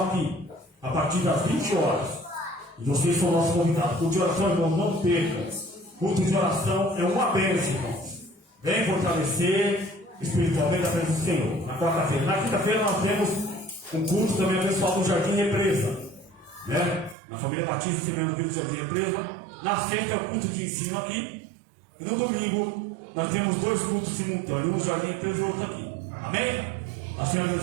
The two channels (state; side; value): drops out; left; at 17.2 s